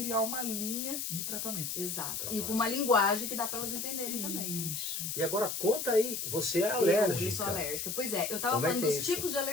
uma linha de tratamento. Exato. E com uma linguagem que dá para elas entenderem também. Isso. E agora conta aí, você é alérgica. Eu sou alérgica. Pois é, eu tava falando dos tipos de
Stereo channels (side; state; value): left; noise; hiss, 3 dB below the sound